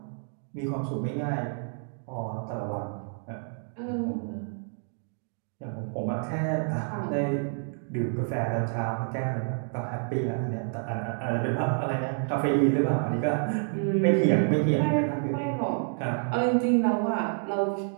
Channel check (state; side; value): silent; left; 59 dB below the other